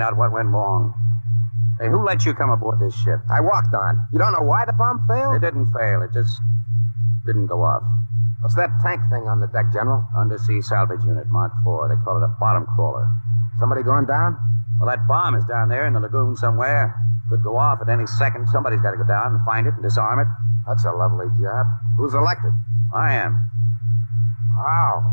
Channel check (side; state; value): both; inverted; correlation -1.00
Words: out what went wrong. Hey, who let you come aboard this ship? I walked on. You don't know why the bomb failed? It didn't fail. It just didn't go off. What's that tank thing on the deck, General? Undersea salvage unit, Mark IV. They call it a bottom crawler. Somebody going down? Well, that bomb is down there in the lagoon somewhere. Could go off at any second. Somebody's got to go down and find it and disarm it. That's a lovely job. Who's elected? I am. How?